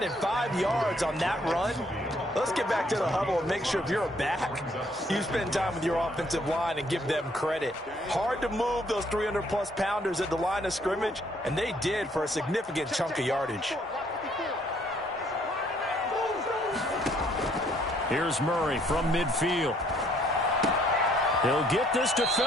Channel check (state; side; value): normal; both; correlation 0.65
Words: 5 yards on that run. Let's get back to the huddle and make sure if you're a back, you spend time with your offensive line and give them credit. Hard to move those 300-plus pounders at the line of scrimmage, and they did for a significant chunk of yardage. Here's Murray from midfield. He'll get this to